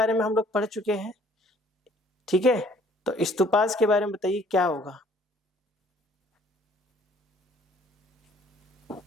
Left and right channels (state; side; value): normal; both; correlation 0.58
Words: में हम लोग पढ़ चुके हैं, ठीक है, तो स्तूपास के बारे में बताइए क्या होगा?